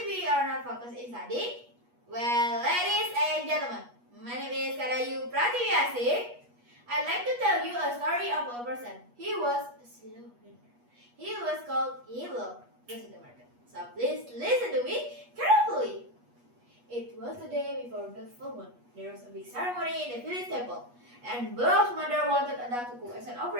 we are not focused in studying? Well, ladies and gentlemen, my name is Pratiwi. I'd like to tell you a story of a person. He was a slow learner. He was called Belog. Goes to the market. So please listen to me carefully. It was the day before the full moon. There was a big ceremony in the village temple, and Belog's mother wanted a duck to cook as an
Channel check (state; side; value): late; left; 8.3 ms